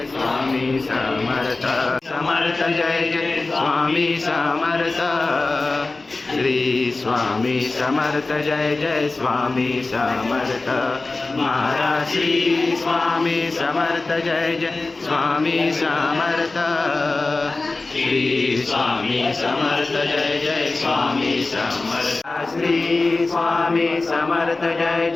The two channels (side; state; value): right; quieter; 3.4 dB